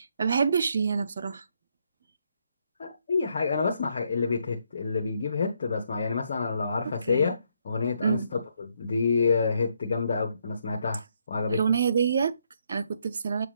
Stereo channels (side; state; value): both; inverted; correlation -0.74